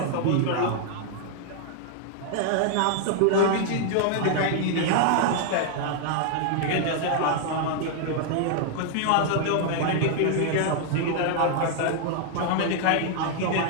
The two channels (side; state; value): both; different; correlation 0.00